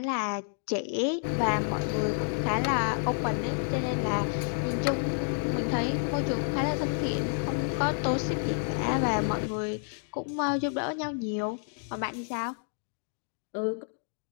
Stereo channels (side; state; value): right; silent; digital silence